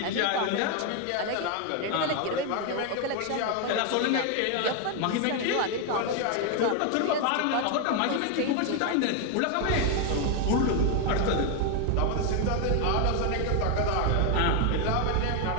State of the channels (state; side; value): different; both; correlation 0.01